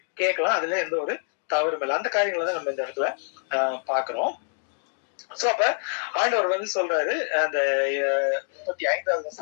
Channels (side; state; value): right; silent; digital silence